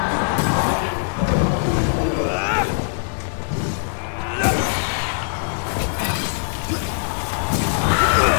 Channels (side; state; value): right; silent; digital silence